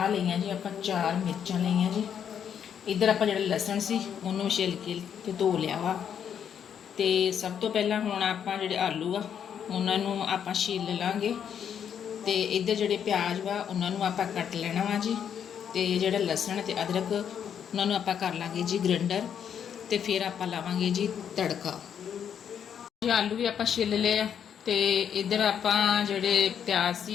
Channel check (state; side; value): quieter; right; 8.4 dB